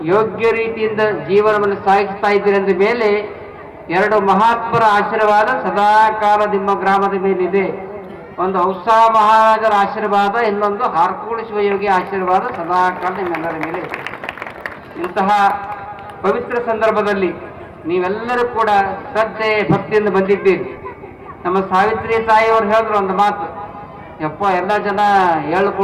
ಯೋಗ್ಯ ರೀತಿಯಿಂದ ಜೀವನವನ್ನು ಸಾಗಿಸ್ತಾ ಇದ್ದೀರಿ ಅಂದ ಮೇಲೆ ಎರಡು ಮಹಾತ್ಮರ ಆಶೀರ್ವಾದ ಸದಾಕಾಲ ನಿಮ್ಮ ಗ್ರಾಮದ ಮೇಲಿದೆ. ಒಂದು ಔಸಾ ಮಹಾರಾಜರ ಆಶೀರ್ವಾದ, ಇನ್ನೊಂದು ಹಾರ್ಕೂಡು ಶಿವಯೋಗಿ ಆಶೀರ್ವಾದ ಸದಾಕಾಲ ನಿಮ್ಮೆಲ್ಲರ ಮೇಲೆ ಇದೆ. ಇಂತಹ ಪವಿತ್ರ ಸಂದರ್ಭದಲ್ಲಿ ನೀವೆಲ್ಲರೂ ಕೂಡ ಶ್ರದ್ಧೆ ಭಕ್ತಿಯಿಂದ ಬಂದಿದ್ದೀರಿ. ನಮ್ಮ ಸಾವಿತ್ರಿ ತಾಯಿಯವರು ಹೇಳಿದ್ರು ಒಂದು ಮಾತು, ಯಪ್ಪ ಎಲ್ಲ ಜನ ಎಳ್ಳು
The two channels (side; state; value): both; identical; correlation 1.00